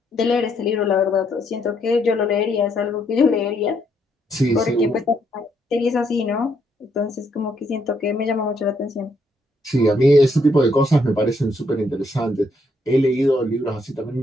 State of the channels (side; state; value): both; normal; correlation 0.73